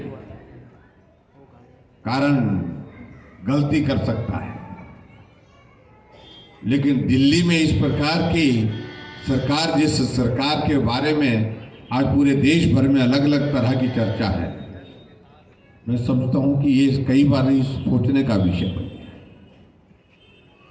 कारण गलती कर सकता है, लेकिन दिल्ली में इस प्रकार की सरकार, जिस सरकार के बारे में आज पूरे देश भर में अलग अलग तरह की चर्चा है, मैं समझता हूं कि ये कई बार सोचने का विषय बन गया।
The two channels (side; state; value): both; identical; correlation 1.00